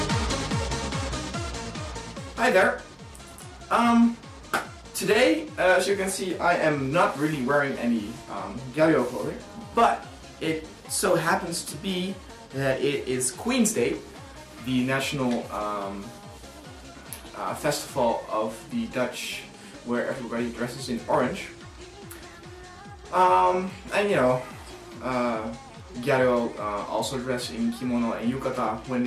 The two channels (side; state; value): both; identical; correlation 1.00